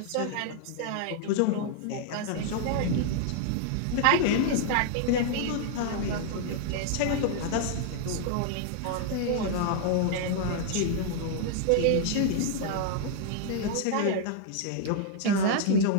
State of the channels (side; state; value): both; different; correlation 0.00